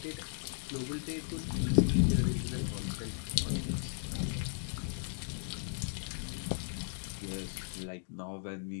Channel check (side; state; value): right; silent; digital silence